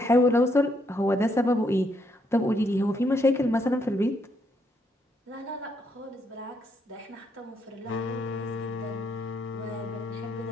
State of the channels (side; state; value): both; normal; correlation 0.75